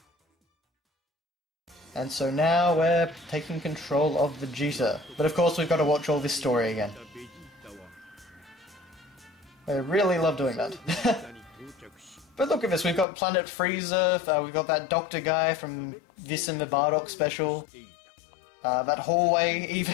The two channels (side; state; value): right; drops out; at 13.1 s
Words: And so now we're taking control of Vegeta. But of course we've got to watch all this story again. I really love doing that. But look at this, we've got Planet Frieza, we've got that doctor guy from This and the Bardock special. That hallway